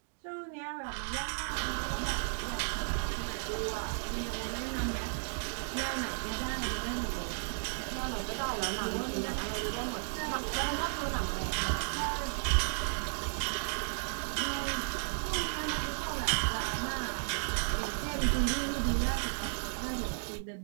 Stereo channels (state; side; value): silent; left; digital silence